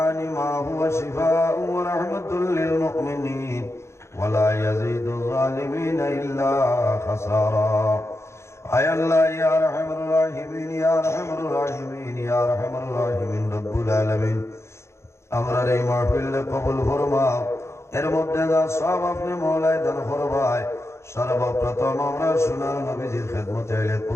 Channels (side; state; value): right; late; 0.13 ms